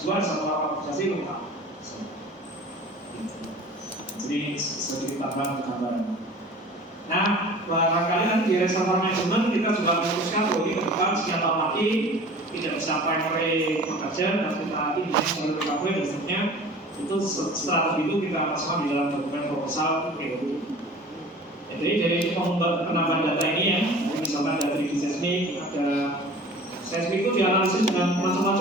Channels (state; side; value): normal; both; correlation 0.43